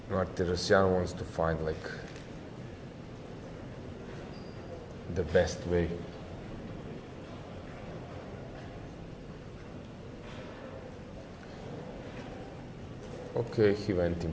Martirosyan wants to find like the best way. Okay, he went in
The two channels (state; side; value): identical; both; correlation 1.00